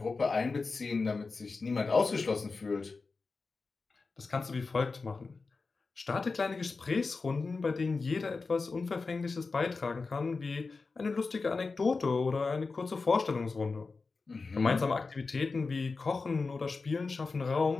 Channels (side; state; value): right; quieter; 4.2 dB